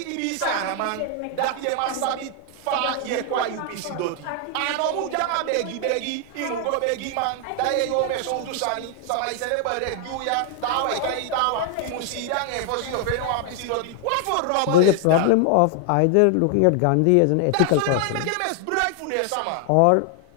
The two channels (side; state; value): both; different; correlation 0.00